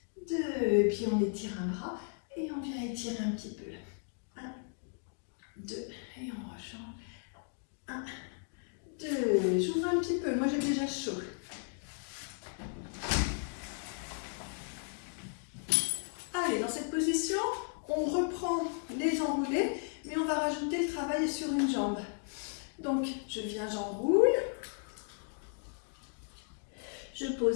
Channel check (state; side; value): silent; right; 54 dB below the other